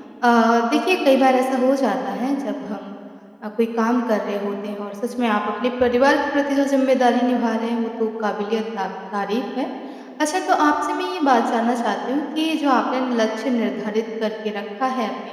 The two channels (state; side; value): identical; both; correlation 1.00